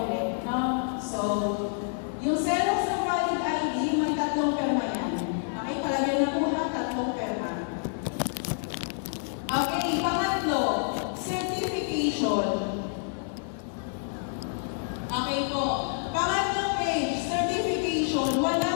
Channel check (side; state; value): right; silent; 57 dB below the other